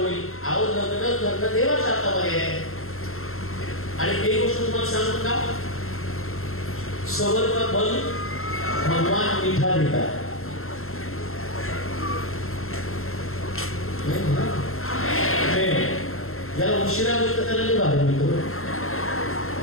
अहो, लग्न करणं देवाच्या हातामध्ये आहे. आणि एक गोष्ट तुम्हाला सांगू का, सबर का फल भगवान मीठा देतात. ज्याला उशिरा होतं त्याला नाही बाहेर मिळतो.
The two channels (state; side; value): late; right; 0.62 ms